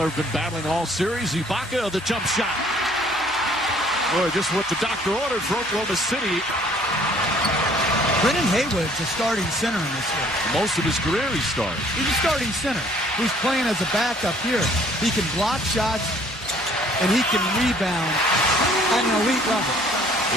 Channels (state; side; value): normal; both; correlation 0.58